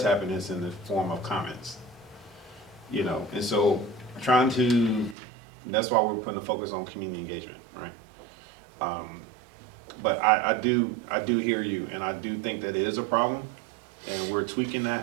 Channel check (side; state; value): left; drops out; at 5.2 s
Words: happen, it's in the form of comments. You know, and so that's why we're putting a focus on community engagement, right? But I do hear you, and I do think that it is a problem, and we're tweaking